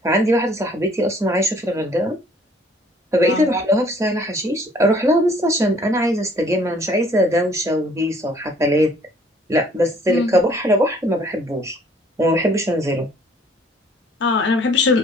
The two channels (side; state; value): both; normal; correlation 0.58